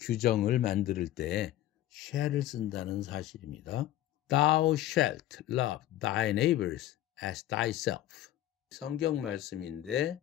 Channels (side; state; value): right; quieter; 13.5 dB